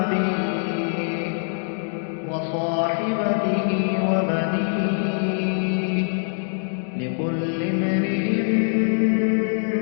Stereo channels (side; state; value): right; silent; digital silence